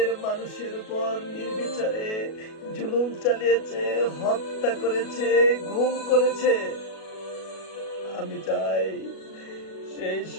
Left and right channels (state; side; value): late; right; 37 ms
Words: মানুষের উপর নির্বিচারে জুলুম চালিয়েছে, হত্যা করেছে, গুম করেছে। আমি চাই সেই